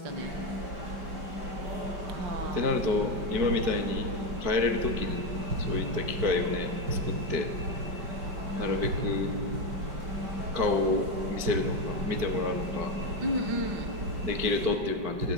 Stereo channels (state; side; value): late; left; 5.1 ms